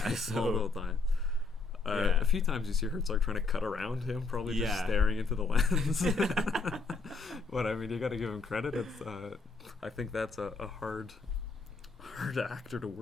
So, multiple times. A few times you see Herzog trying to cut around him, probably just staring into the lens. But I mean, you got to give him credit. It's I think that's a hard actor to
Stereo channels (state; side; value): quieter; right; 4.0 dB